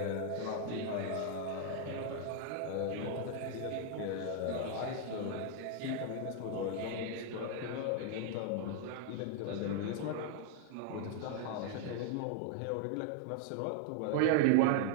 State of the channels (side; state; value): both; different; correlation 0.00